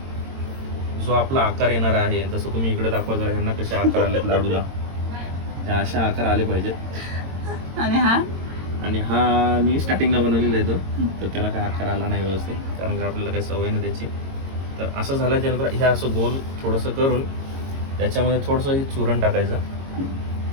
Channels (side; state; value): left; late; 22 ms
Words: जो आपला आकार येणार आहे, जसं तुम्ही इकडे दाखवा जरा, ह्यांना कसे आकार आलेत लाडूला, त्या अशा आकार आले पाहिजेत. आणि हा मी स्टार्टिंगला बनवलेला आहे तो, तर त्याला काय आकार आला नाही व्यवस्थित, कारण का आपल्याला काही सवय नाही त्याची. तर असं झाल्याच्यानंतर हे असं गोल थोडंसं करून त्याच्यामध्ये थोडंसं हे चुरण टाकायचं,